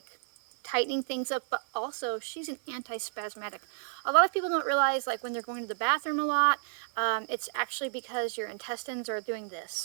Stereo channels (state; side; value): silent; left; digital silence